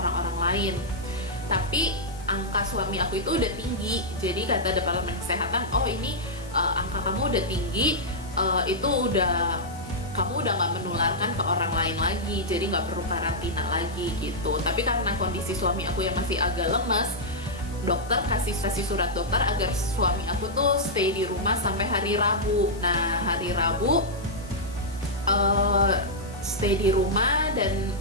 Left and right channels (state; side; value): noise; left; hiss, 21 dB below the sound